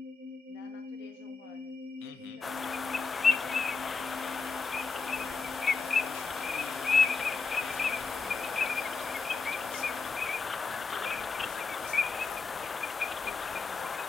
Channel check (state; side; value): quieter; right; 4.6 dB